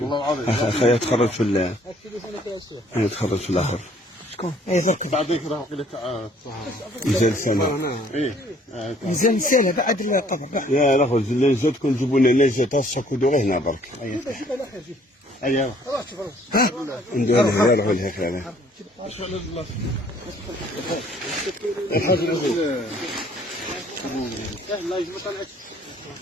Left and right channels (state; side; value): normal; both; correlation 0.60